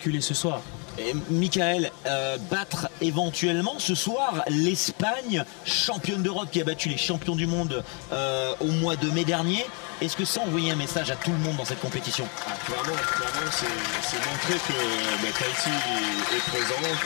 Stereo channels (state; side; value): quieter; right; 35.1 dB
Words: ce soir. Et Michael, battre éventuellement ce soir l'Espagne, championne d'Europe qui a battu les champions du monde au mois de mai dernier, est-ce que ça envoie un message à tout le monde dans cette compétition? Clairement, c'est montrer que Tahiti est